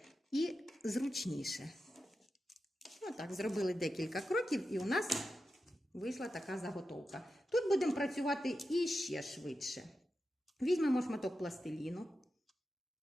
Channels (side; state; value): both; normal; correlation 0.90